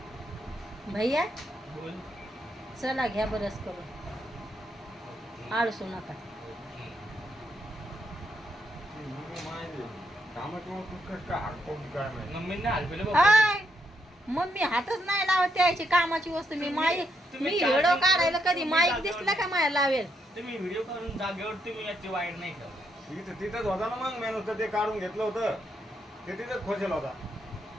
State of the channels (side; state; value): both; normal; correlation 0.78